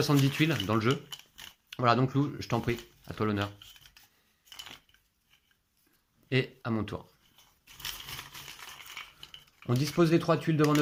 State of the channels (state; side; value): identical; both; correlation 1.00